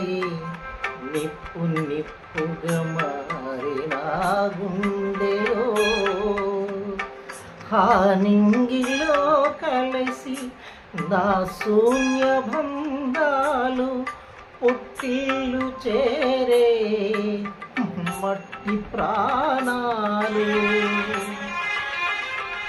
నిప్పు నిప్పుగా మారి నా గుండెలో హానింగిలో కలిసి నా శూన్య బంధాలు పుట్టిల్లు చేరే మట్టి ప్రాణాలు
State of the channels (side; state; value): both; identical; correlation 1.00